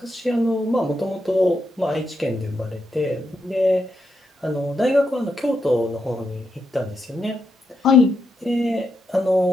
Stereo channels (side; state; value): both; normal; correlation 0.83